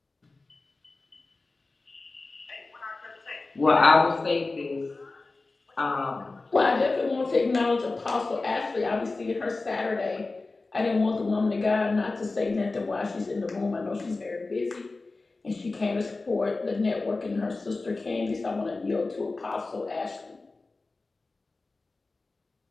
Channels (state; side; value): quieter; right; 3.5 dB